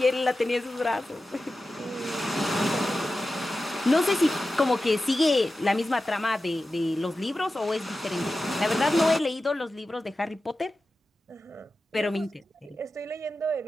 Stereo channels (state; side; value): normal; both; correlation 0.93